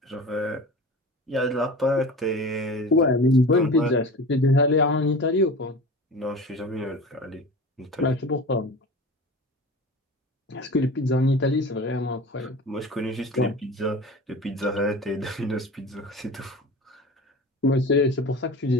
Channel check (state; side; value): normal; both; correlation 0.34